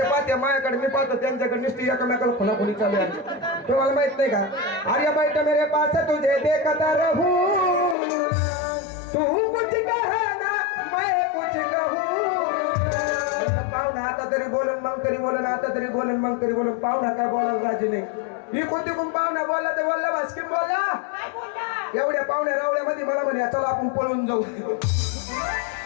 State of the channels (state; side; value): drops out; right; at 8.0 s